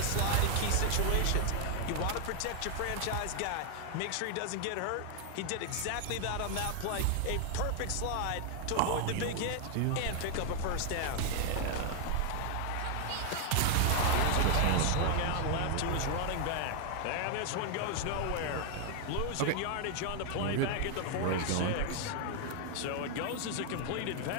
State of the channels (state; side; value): different; both; correlation 0.00